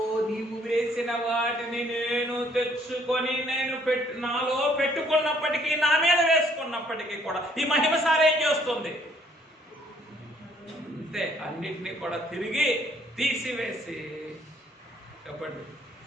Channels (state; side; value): normal; both; correlation 0.64